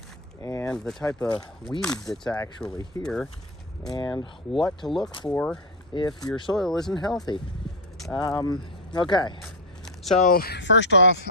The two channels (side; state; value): both; normal; correlation 0.09